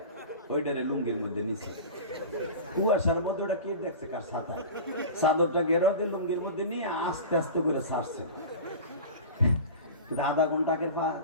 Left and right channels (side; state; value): both; inverted; correlation -0.33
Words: ওইটারে লুঙ্গির মধ্যে নিচে কুয়াশার মধ্যে ওটা কে দেখছে কার ছাতা, চাদরটা গেরাও দিয়ে লুঙ্গির মধ্যে নিয়ে আস্তে আস্তে করে ছাড়ছে। আধা ঘন্টা আগের পা